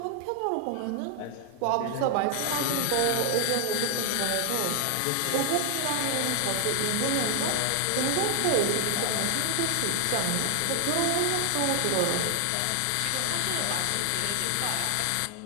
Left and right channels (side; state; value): both; different; correlation 0.00